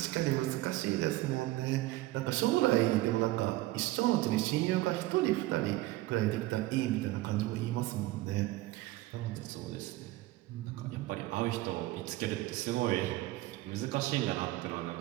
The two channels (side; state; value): left; quieter; 17.8 dB